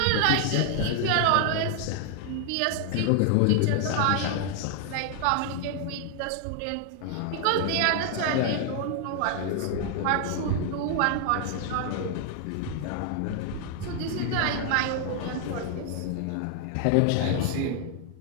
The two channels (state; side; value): different; both; correlation 0.00